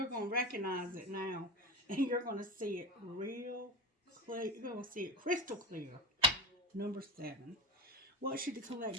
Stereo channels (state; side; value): normal; both; correlation 0.24